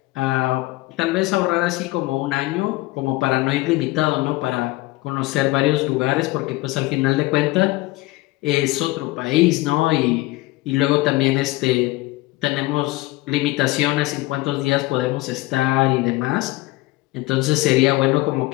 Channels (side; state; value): right; quieter; 19.7 dB